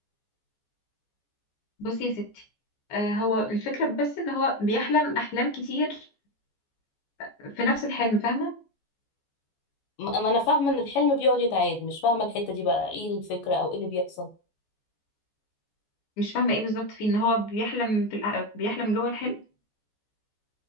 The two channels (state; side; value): late; right; 14 ms